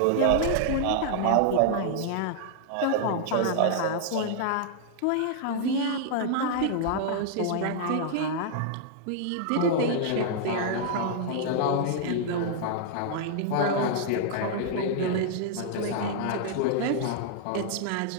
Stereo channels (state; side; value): different; both; correlation -0.01